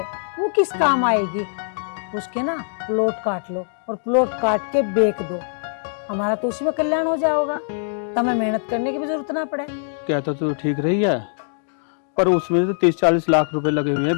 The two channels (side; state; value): right; silent; digital silence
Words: वो किस काम आएगी? उसके ना प्लॉट काट लो और प्लॉट काट के बेच दो, हमारा तो उसी में कल्याण हो जाएगा, तुम्हें मेहनत करने की भी जरूरत ना पड़े। कहता तो ठीक रही है, पर उसमें तो 30-40 लाख रुपए लगे हुए हैं